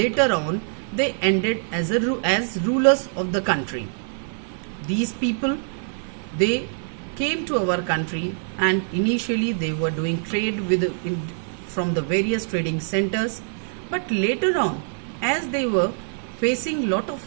on, they ended as rulers of the country. These people, they came to our country, and initially they were doing trade from the various trading centers. But later on, as they were facing lot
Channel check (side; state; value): left; silent; 56 dB below the other